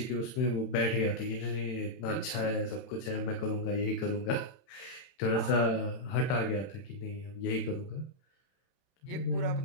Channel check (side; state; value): right; late; 31 ms